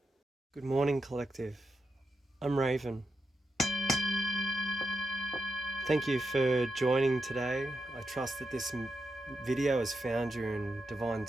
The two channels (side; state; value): both; normal; correlation 0.87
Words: Good morning, collective. I'm Raven. Thank you for joining today. I trust that this video has found you in divine